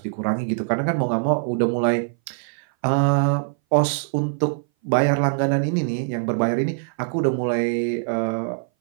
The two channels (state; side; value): silent; left; 59 dB below the other